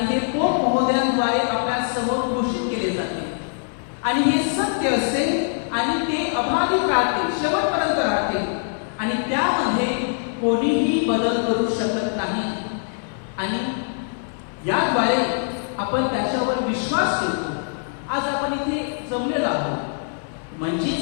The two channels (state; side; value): silent; right; 60 dB below the other